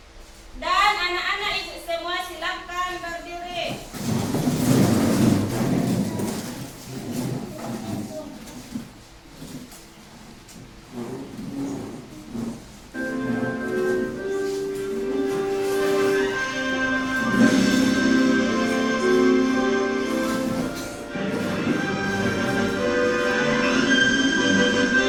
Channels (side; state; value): both; identical; correlation 1.00